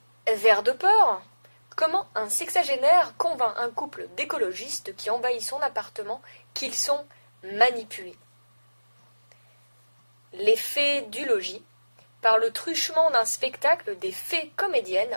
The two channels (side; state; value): both; inverted; correlation -1.00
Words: Vers de peur, comment un sexagénaire convainc un couple d'écologistes qui envahit son appartement qu'ils sont manipulés. Les fées du logis, par le truchement d'un spectacle, des fées